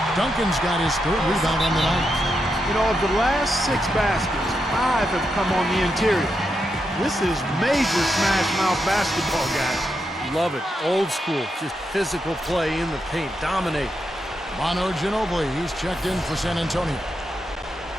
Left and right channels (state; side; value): normal; both; correlation 0.84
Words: Duncan's got his 3rd rebound on the night. You know, of the last 6 baskets, 5 have come on the interior. This is major smash mouth basketball, guys. Love it. Old school. Just physical play in the paint. Dominate. Manu Ginobili, he's checked in for San Antonio.